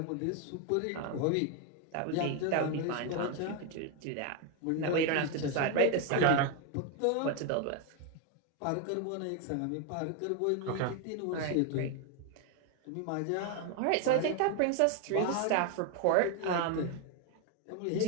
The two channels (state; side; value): different; both; correlation 0.01